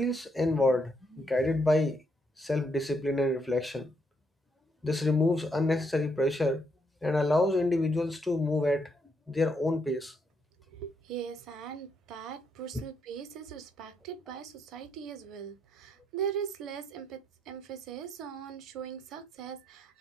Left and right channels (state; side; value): normal; both; correlation 0.77